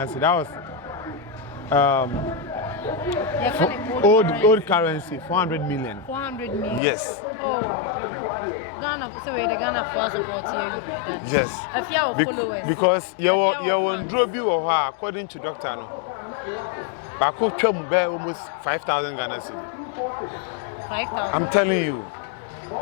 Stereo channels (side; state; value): right; drops out; at 6.8 s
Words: cedi. That was old currency 400 million. 400 million. Yes. Oh. Ghana, so the Ghana for support here. Yes. Efya will follow us. Because you won drop you or her according to doctor no. Bako twam be almost 5,000 Ghana cedi. 5,000. I'm telling you.